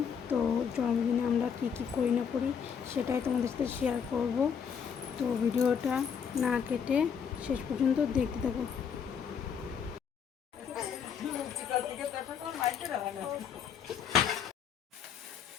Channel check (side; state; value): right; quieter; 7.2 dB